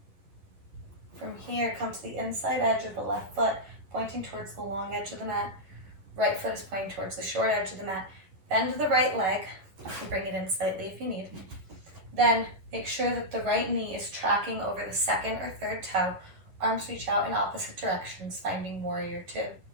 From here, come to the inside edge of the left foot, pointing towards the long edge of the mat. Right foot is pointing towards the short edge of the mat. Bend the right leg. You can bring it in slightly if you need. Then make sure that the right knee is tracking over the second or third toe. Arms reach out in opposite directions, finding warrior two.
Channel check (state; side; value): late; left; 11 ms